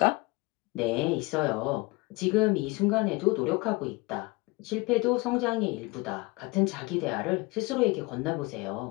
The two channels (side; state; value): right; quieter; 24.3 dB